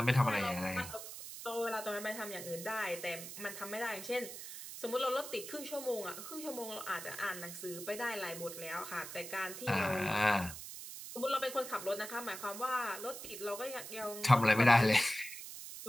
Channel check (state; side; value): noise; right; hiss, 10 dB below the sound